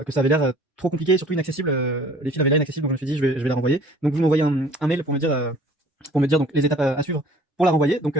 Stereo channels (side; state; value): both; normal; correlation 0.52